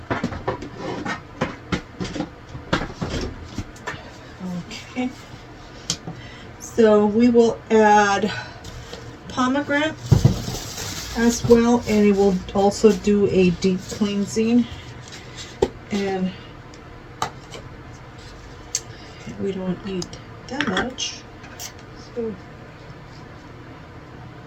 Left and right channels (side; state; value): both; identical; correlation 1.00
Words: Okay. So we will add pomegranate as well, and it will also do a deep cleansing. And we don't need that much. So